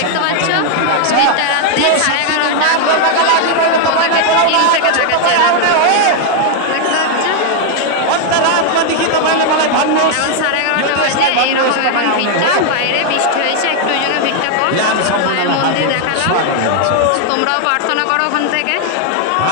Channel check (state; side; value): different; both; correlation 0.00